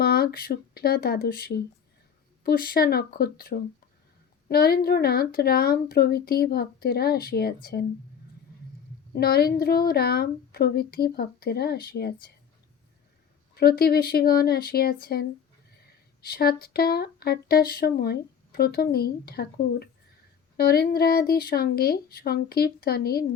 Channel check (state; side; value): quieter; right; 7.6 dB